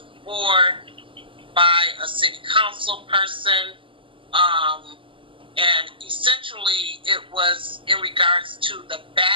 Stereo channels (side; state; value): left; late; 0.25 ms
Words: board by a city council person. And essentially it was in regards to the